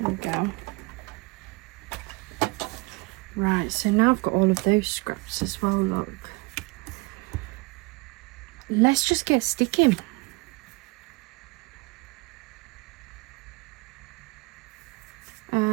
we go. Right, so now I've got all of those scraps as well, look. Let's just get sticking.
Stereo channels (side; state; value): left; quieter; 25.3 dB